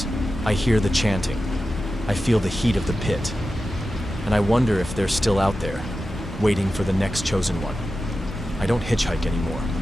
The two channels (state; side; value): normal; both; correlation 0.92